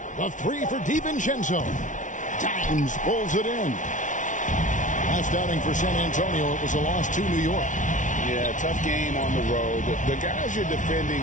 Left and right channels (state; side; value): late; right; 0.37 ms